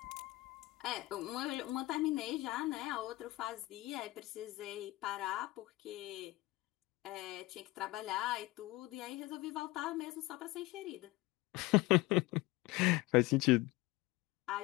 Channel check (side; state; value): right; quieter; 19.7 dB